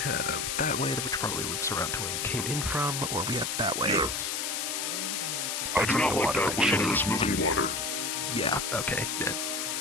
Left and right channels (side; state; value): left; noise; hiss, 1 dB below the sound